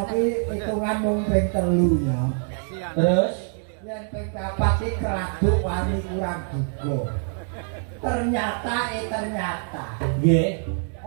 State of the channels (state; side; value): silent; left; 55 dB below the other